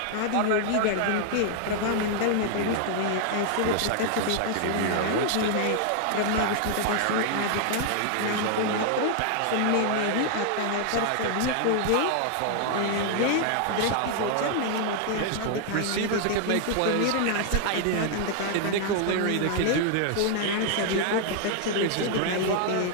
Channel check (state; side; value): different; both; correlation 0.00